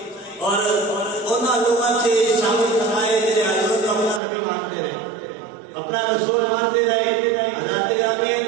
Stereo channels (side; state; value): left; drops out; at 4.2 s